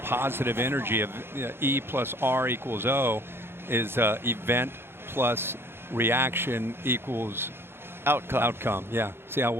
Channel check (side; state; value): left; late; 0.11 ms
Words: positive energy of E plus R equals O is event plus reaction equals outcome. Yeah. See how